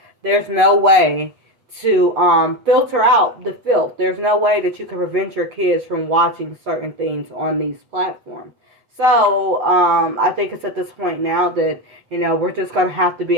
there's no way to filter out the filth. There's no way that you can prevent your kids from watching certain things on these platforms. So I think it's at this point now that we're just gonna have to be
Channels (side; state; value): left; late; 8.1 ms